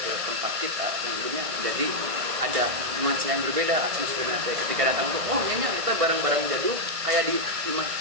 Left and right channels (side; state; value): left; late; 1.6 ms